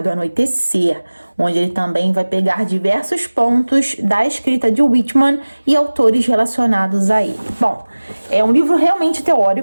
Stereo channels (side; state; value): both; inverted; correlation -1.00